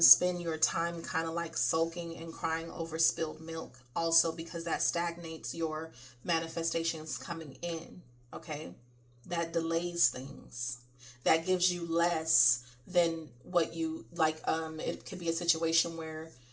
your time kind of like sulking and crying over spilled milk also, because that stagnates your manifestations coming in, okay? That delays things. That gives you less than what you like. It could be a situation where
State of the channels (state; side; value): identical; both; correlation 1.00